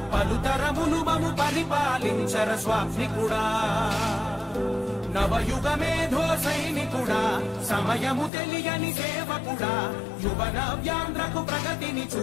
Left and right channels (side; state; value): right; drops out; at 8.3 s